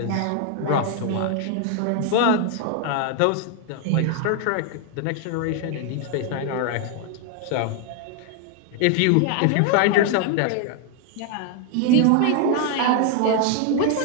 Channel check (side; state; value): both; different; correlation 0.00